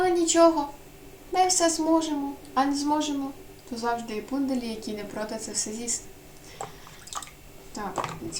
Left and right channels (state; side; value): identical; both; correlation 1.00